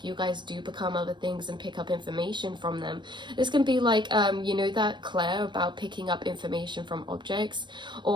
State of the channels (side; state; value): left; late; 0.22 ms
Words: you guys do become other things and pick up information from them. This can be like, you know, that Claire about picking up information from objects,